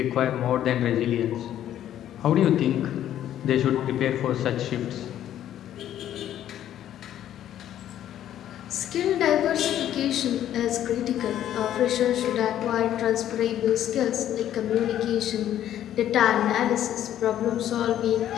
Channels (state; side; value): quieter; right; 11.4 dB